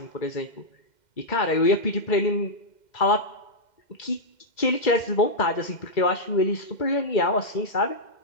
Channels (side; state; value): right; late; 2.1 ms